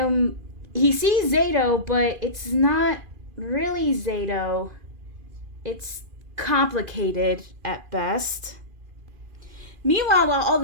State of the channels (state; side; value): late; left; 2.4 ms